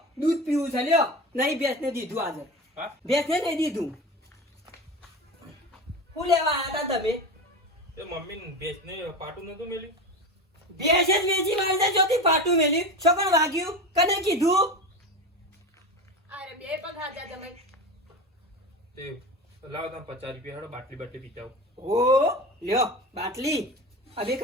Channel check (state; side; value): normal; both; correlation 0.26